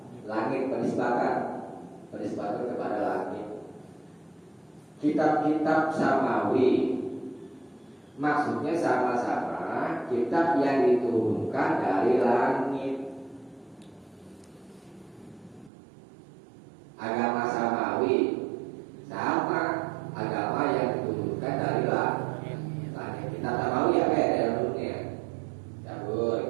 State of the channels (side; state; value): left; drops out; at 15.7 s